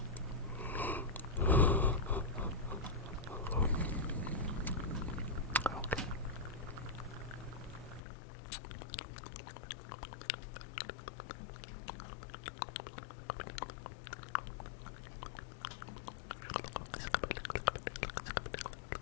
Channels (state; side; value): drops out; right; at 8.0 s